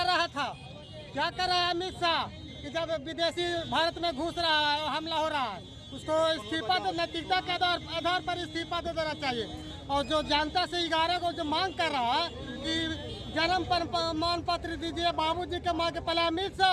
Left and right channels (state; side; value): identical; both; correlation 1.00